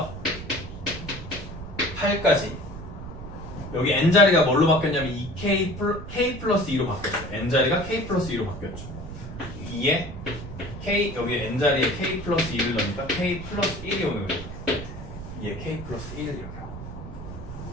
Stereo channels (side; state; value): right; noise; rumble, 11 dB below the sound